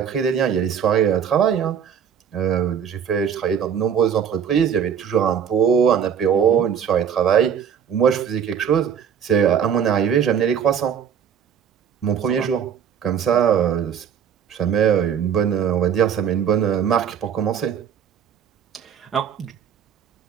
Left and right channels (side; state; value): left; quieter; 8.1 dB